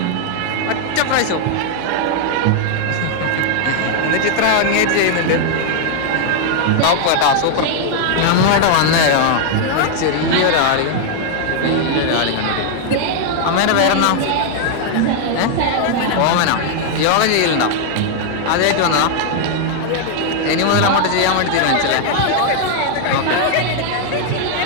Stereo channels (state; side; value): different; both; correlation 0.00